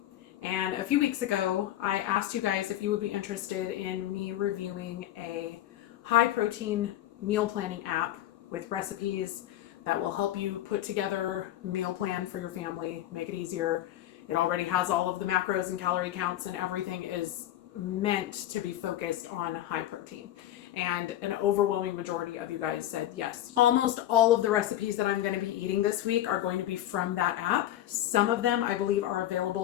And a few weeks ago, I asked you guys if you would be interested in me reviewing a high protein meal planning app with recipes that will help you put together a meal plan for your family, make it easier. It already has all of the macros and calorie counts, and everything is meant to be focused on high protein. And an overwhelming majority of you guys said yes. Almost all of the recipes that I'm going to be eating this week are going to be from that app. Some of them I believe are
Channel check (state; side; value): quieter; right; 13.1 dB